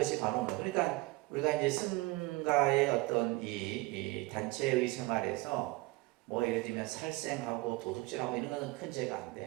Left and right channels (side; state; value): left; quieter; 22.2 dB